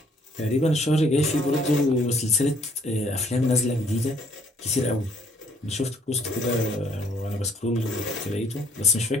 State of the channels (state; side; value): normal; both; correlation 0.63